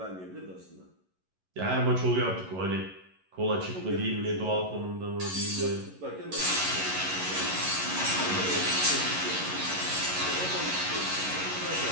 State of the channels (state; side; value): late; left; 11 ms